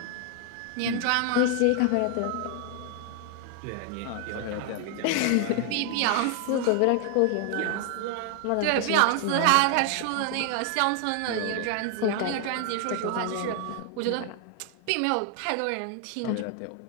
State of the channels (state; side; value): different; both; correlation 0.00